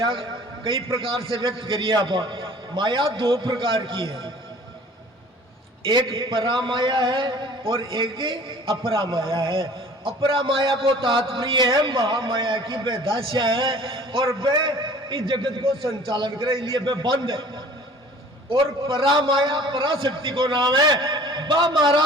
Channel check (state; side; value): normal; both; correlation 0.49